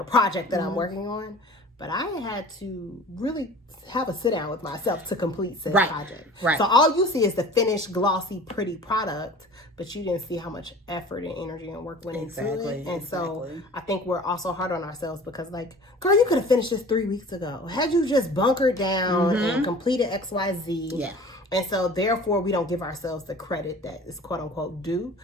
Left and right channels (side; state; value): both; normal; correlation 0.43